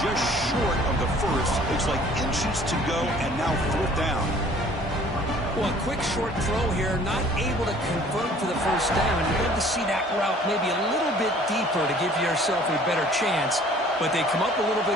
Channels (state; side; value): normal; both; correlation 0.53